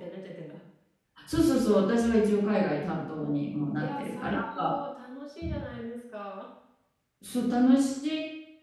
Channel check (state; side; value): identical; both; correlation 1.00